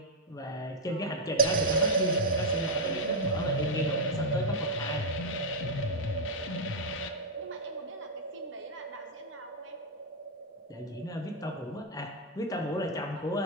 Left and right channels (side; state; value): both; normal; correlation -0.02